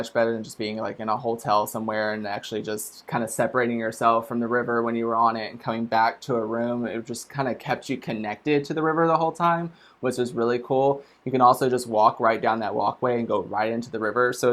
better than just being like in a hotel somewhere and actually just kind of separating yourself from the river when you were on it and coming back to a room. It just kind of kept you connected to the river the whole time, which was really cool. You can also just walk right down that walkway and go right into the river. So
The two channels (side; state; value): both; identical; correlation 1.00